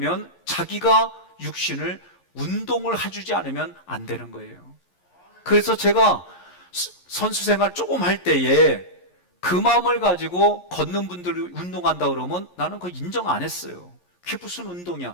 자기가 육신을 운동을 해주지 않으면 안 되는 거예요. 그래서 제가 선수 생활 조금 할 때에 그 마음을 가지고 걷는 분들이 운동한다 그러면 나는 그거 인정 안 했어요. 그게 무슨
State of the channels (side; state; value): right; late; 11 ms